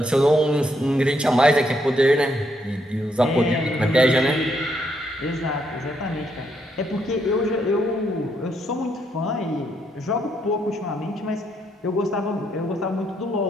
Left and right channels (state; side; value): normal; both; correlation 0.75